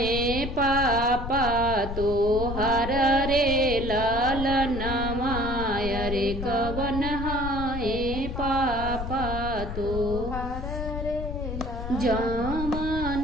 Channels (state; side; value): noise; left; rumble, 6 dB below the sound